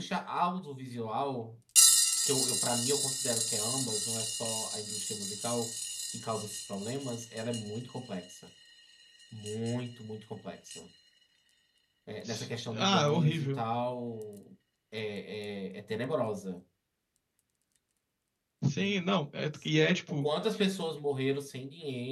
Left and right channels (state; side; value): identical; both; correlation 1.00